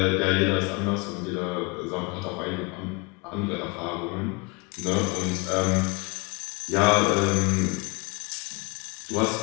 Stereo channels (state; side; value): quieter; right; 29.1 dB